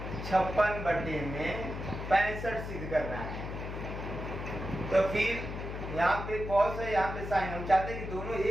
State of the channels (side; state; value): left; noise; hum, 6 dB below the sound